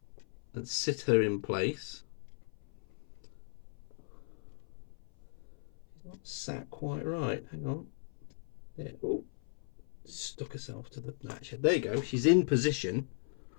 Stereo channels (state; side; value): silent; right; 53 dB below the other